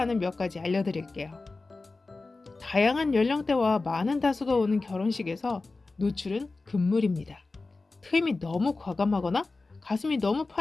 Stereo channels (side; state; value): right; quieter; 3.6 dB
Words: 몇 가지 알려드릴게요. 다양한 연령대와 많은 다수가 오는 결혼식에서 노출은 금물입니다. 트임이 너무 과감하거나 가슴이 너무